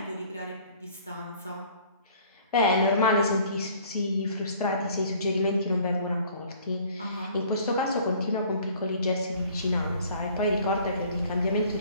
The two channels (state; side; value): inverted; both; correlation -0.54